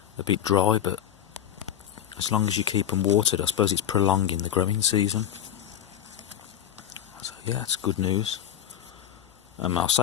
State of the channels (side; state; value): right; quieter; 10.1 dB